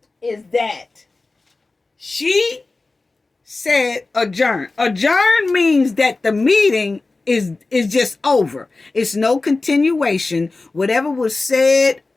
is that she said adjourn. Adjourn means that the meeting is just over. It's no continuation. Whatever was said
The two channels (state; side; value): quieter; right; 3.5 dB